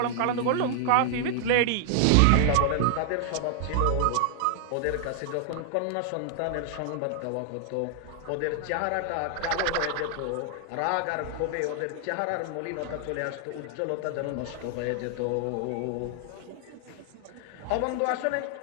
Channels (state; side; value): different; both; correlation 0.00